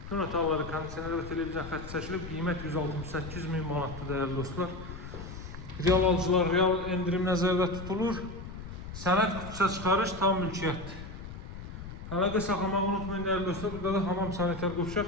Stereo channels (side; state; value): left; noise; rumble, 11 dB below the sound